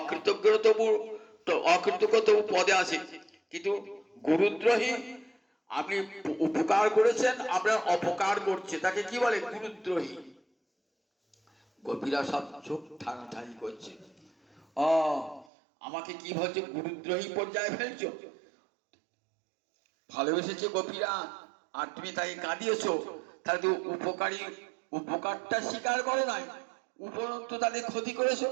তবু পদে আছে, কিন্তু গুরুদ্রোহী, আপনি উপকার করেছেন, আপনার অপকার করছে, তাকে কি বলে? গুরুদ্রোহী। গোপীরা সব চোখ ঠানাঠানি করছে, আমাকে কি বলছে, গুরুদ্রোহী পর্যায়ে ফেলছো? ভালোবেসেছে গোপীরা, আর তুমি তাকে কাঁদিয়েছ, তাহলে তো উপকারটা স্বীকার করো নাই, উপরন্তু তাদের ক্ষতি করেছো,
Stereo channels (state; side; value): drops out; left; at 15.5 s